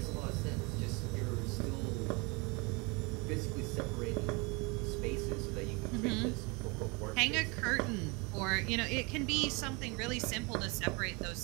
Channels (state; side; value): quieter; left; 28.7 dB